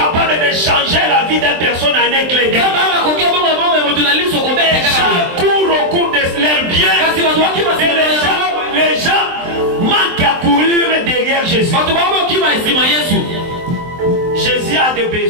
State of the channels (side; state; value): left; late; 23 ms